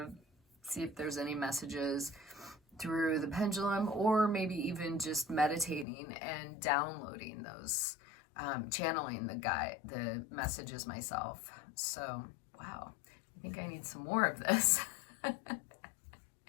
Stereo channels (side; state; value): right; drops out; at 5.9 s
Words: see if there's any messages through the pendulum, or maybe even just meditating and downloading those, channeling the messages myself. So wow, I think I need some more of this.